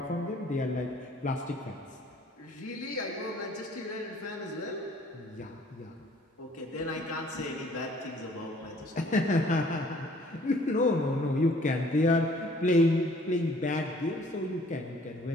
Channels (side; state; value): both; normal; correlation 0.57